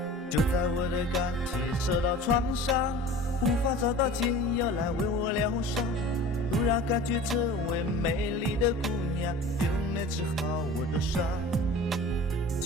就在我的感情受到创伤，无法找到解药来为我疗伤，突然感觉这位美丽的姑娘就能治好我的伤，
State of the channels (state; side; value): normal; both; correlation 0.40